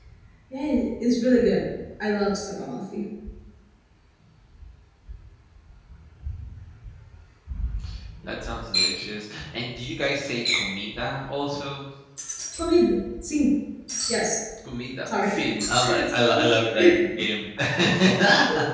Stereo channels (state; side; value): identical; both; correlation 1.00